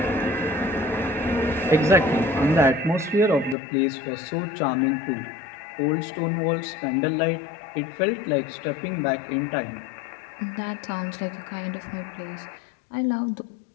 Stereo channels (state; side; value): drops out; right; at 3.6 s